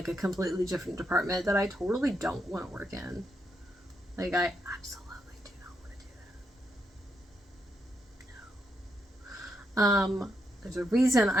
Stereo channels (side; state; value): both; normal; correlation 0.80